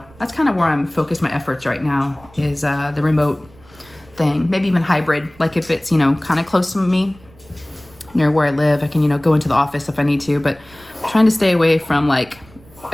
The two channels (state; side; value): noise; right; rumble, 25 dB below the sound